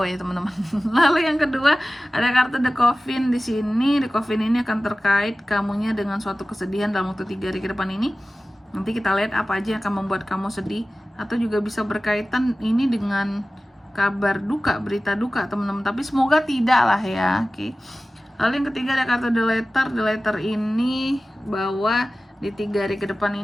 ya teman-teman. Lalu yang kedua ada kartu The Coffin di sini. The Coffin ini akan terkait kamunya dengan suatu kesedihan dalam waktu 3 hari ke depan ini. Nanti kita lihat apa aja yang akan membuat kamu sedih, atau juga bisa berkaitan ini dengan kabar duka, berita duka teman-teman. Tapi semoga tidak lah ya. Oke. Lalu yang ketiga ada kartu The Letter. The Letter ini bahwa di 3 hari ke depan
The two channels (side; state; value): both; normal; correlation 0.96